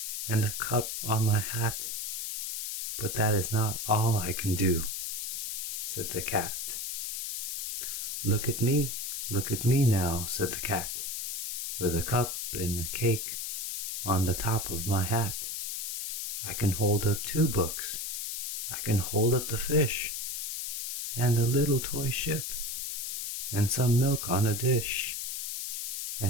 and a cup on my hat. But that is not all I can do, said the cat. Look at me now, said the cat, with a cup and a cake on the top of my hat. I can hold up 2 books. I can hold up the fish, and a little toy ship, and some milk on a dish.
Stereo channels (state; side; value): noise; left; hiss, 3 dB below the sound